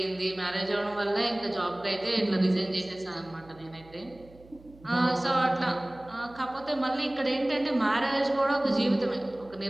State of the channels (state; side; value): noise; right; hum, 24 dB below the sound